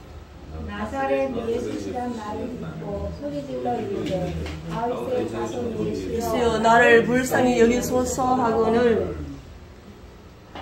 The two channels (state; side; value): identical; both; correlation 1.00